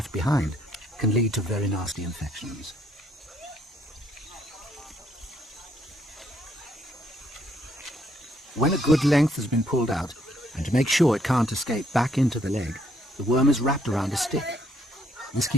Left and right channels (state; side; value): normal; both; correlation 0.69